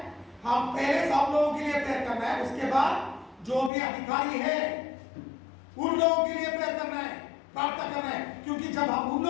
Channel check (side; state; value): right; drops out; at 3.7 s